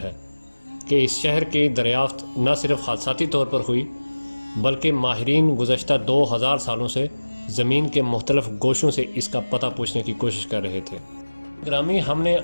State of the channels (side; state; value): both; inverted; correlation -1.00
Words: ہے کہ اس شہر کی دریافت نہ صرف حادثاتی طور پر ہوئی بلکہ ماہرین گزشتہ 2000 سالوں سے زمین کے مختلف گوشوں سے اس کا پتہ پوچھنے کی کوشش کر رہے تھے۔ گرامی، ہم نے